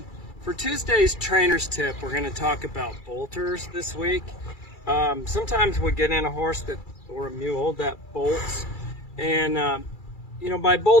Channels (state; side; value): late; right; 2.3 ms